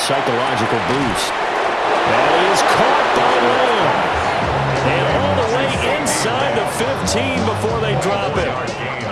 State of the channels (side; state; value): both; identical; correlation 1.00